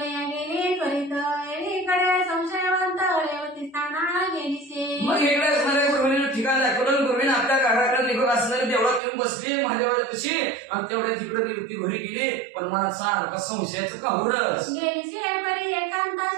गेली त्वरित एकीकडे संशयवंत रेवती स्थाना गेलीसे. मग इकडे असणाऱ्या गुरुविने ठिकाण दाखवलं. गुरुविने आपल्या घराकडे निघून असणारे देवळात येऊन बसली महादेवाच्यापाशी आणि तेवढ्या तिकडे रेवती घरी गेली. पण मनात सारखा संशयाचं काहुरच गेलीसे परी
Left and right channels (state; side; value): drops out; left; at 9.0 s